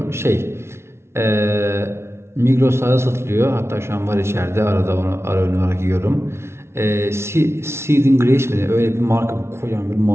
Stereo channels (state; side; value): late; left; 0.13 ms